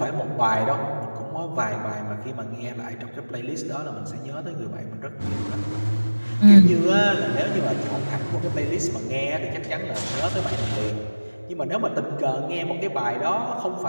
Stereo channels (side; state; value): both; inverted; correlation -1.00